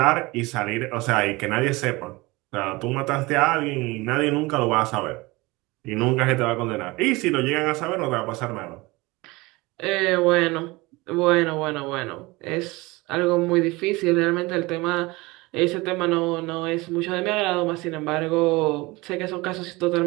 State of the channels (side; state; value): left; quieter; 22.7 dB